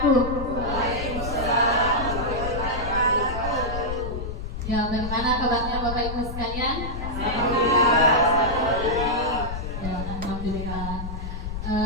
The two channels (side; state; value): left; noise; rumble, 6 dB below the sound